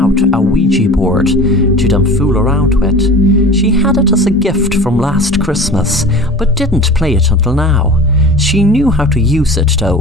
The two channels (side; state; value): both; normal; correlation 0.38